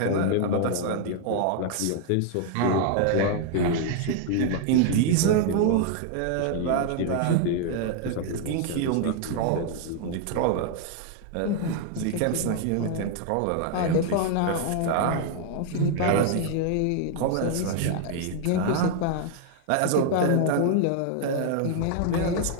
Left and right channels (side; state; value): both; different; correlation 0.00